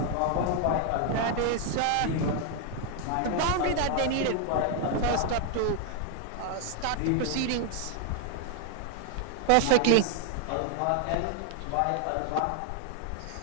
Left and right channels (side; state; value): both; different; correlation 0.00